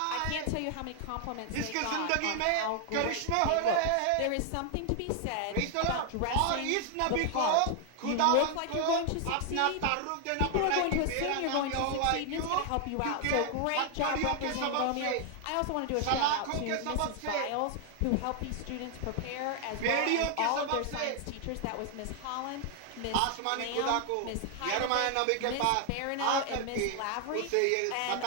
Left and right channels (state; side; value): different; both; correlation 0.00